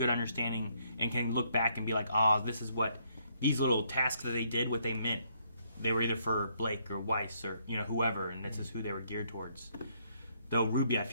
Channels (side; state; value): both; inverted; correlation -0.71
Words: understanding and can look back and be like, oh, this is what these little tasks that they did, what they meant. They were either for Blake or Weiss or whoever, and this is who they were geared towards. Though Ruby, I